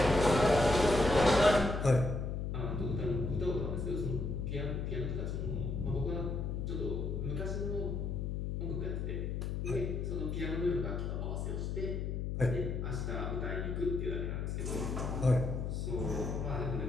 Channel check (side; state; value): left; noise; hum, 2 dB below the sound